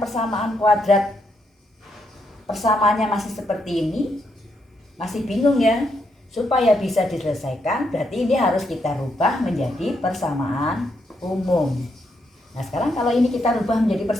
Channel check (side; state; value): both; normal; correlation 0.78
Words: persamaan kuadrat, persamaannya masih seperti ini, masih bingung ya? Supaya bisa diselesaikan, berarti ini harus kita rubah menjadi persamaan umum. Nah sekarang kalau ini kita rubah menjadi